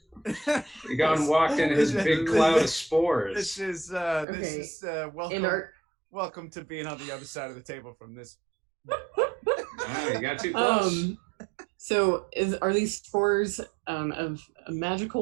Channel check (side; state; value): left; drops out; at 4.2 s